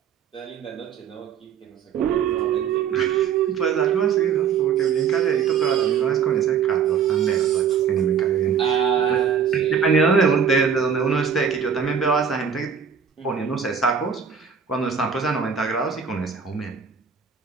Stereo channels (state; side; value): quieter; left; 7.0 dB